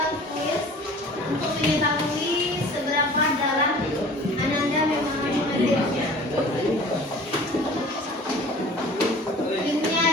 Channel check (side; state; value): both; normal; correlation 0.45